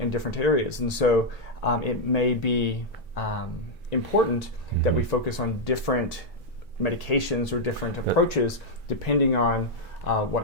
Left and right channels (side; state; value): right; noise; hum, 27 dB below the sound